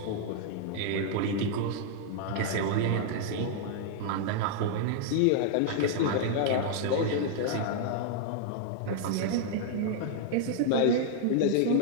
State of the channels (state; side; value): different; both; correlation -0.01